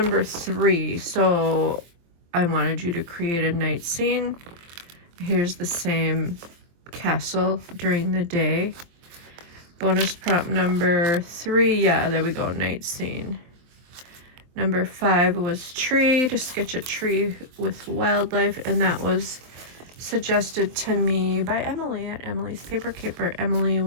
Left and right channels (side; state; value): left; late; 24 ms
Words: 3. So I wanted you to create a night scene. Here's the same castle during the day. Bonus prompt number 3, yeah, there we go, night scene. Number 5 was tree, to sketch a tree with wildlife, and that was suggested to me by Emily at Emily's Paper Caper. Emily